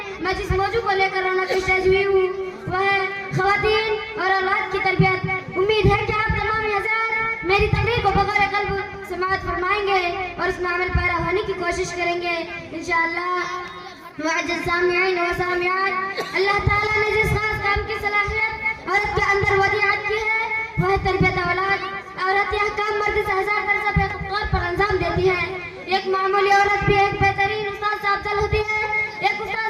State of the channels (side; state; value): both; identical; correlation 1.00